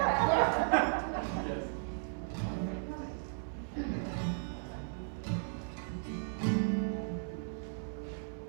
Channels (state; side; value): silent; left; 54 dB below the other